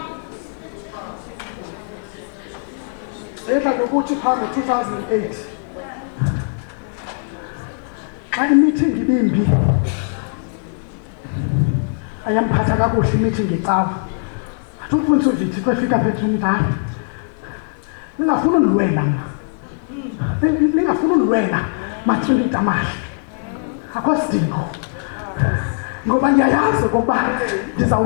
edla ngokuthi phaa ngo-2008 xa imeeting ibimbi ayamphatha kakuhle imeeting ecawa. Athi umfundisi uVithi xa efika phethu umdala, ningafuni undilwela mna, ningafuni undilwela matrili tamahle, akho sidingo, ngoba ndiyayazi okokuba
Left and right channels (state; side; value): silent; right; digital silence